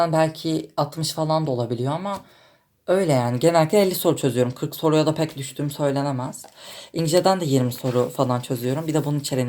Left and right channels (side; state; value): both; identical; correlation 1.00